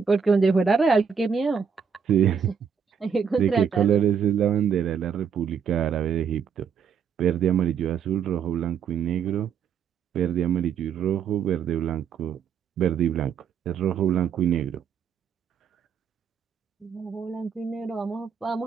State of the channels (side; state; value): left; quieter; 7.0 dB